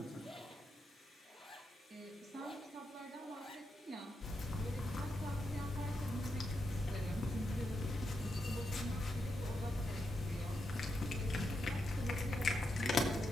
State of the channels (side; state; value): both; normal; correlation 0.84